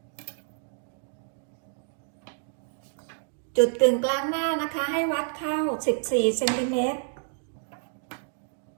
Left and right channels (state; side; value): silent; left; digital silence